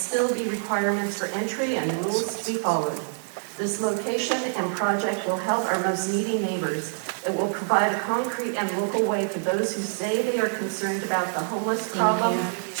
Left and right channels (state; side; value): silent; left; digital silence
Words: be requirements for entry and rules to be followed. This location and project will help our most needy neighbors. It will provide a concrete and local way for those who say they are concerned about the homeless problem